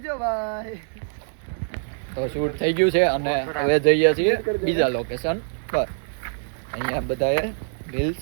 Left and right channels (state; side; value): silent; left; digital silence